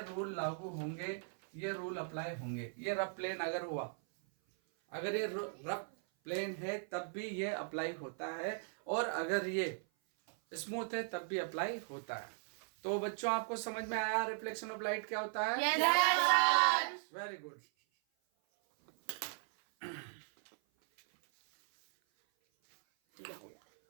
लागू होंगे, ये रूल अप्लाई होंगे। ये रफ प्लेन अगर हुआ, अगर ये रफ प्लेन है तब भी ये अप्लाई होता है, और अगर ये स्मूथ है तब भी अप्लाई होता है। तो बच्चों, आपको समझ में आया रिफ्लेक्शन ऑफ लाइट क्या होता है? Yes sir. Very good.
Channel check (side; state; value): left; silent; 53 dB below the other